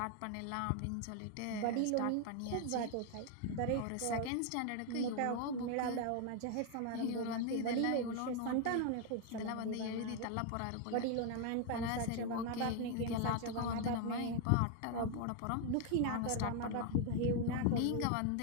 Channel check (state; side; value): different; both; correlation 0.00